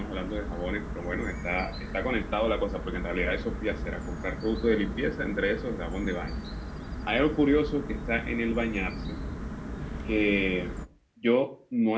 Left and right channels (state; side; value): identical; both; correlation 1.00